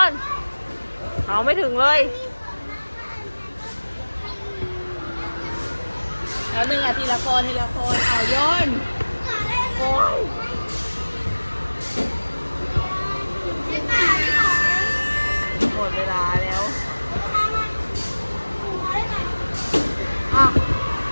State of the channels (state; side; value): inverted; both; correlation -1.00